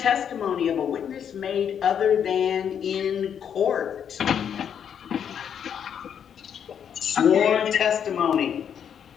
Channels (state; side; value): quieter; right; 8.3 dB